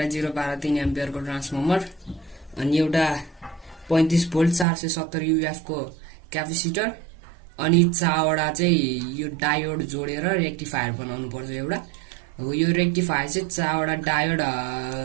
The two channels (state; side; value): drops out; left; at 4.7 s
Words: एम्पियरको ट्रान्सफर्मर अनि एउटा 35 भोल्ट 470 युएफको क्यापेसिटर अनि 4वटा चाहिँ यो डायोड जोडेर रेक्टिफायर बनाउनु पर्छ एउटा। हो यो रेक्टिफायर चाहिँ 4वटा डायोड